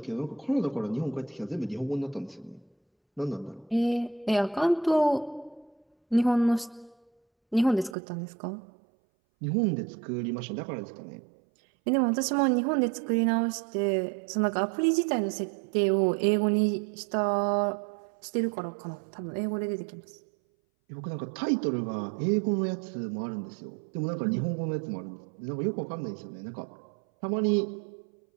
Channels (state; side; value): drops out; left; at 8.0 s